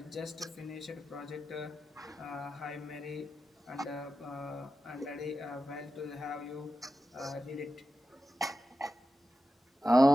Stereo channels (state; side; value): normal; both; correlation 0.91